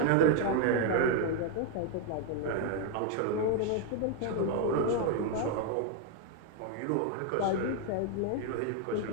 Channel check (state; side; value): different; both; correlation 0.01